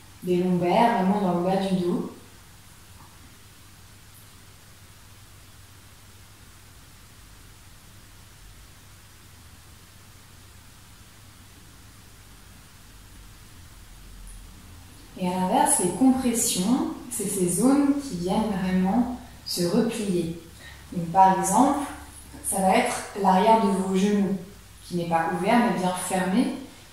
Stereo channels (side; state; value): both; identical; correlation 1.00